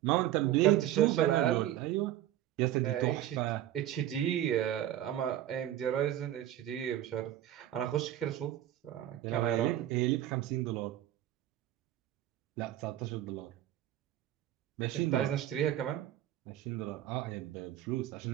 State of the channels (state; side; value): quieter; left; 12.7 dB